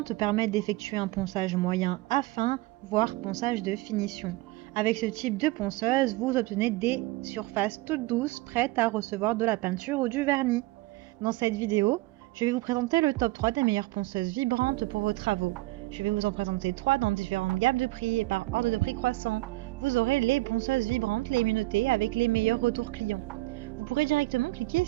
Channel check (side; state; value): left; quieter; 20.3 dB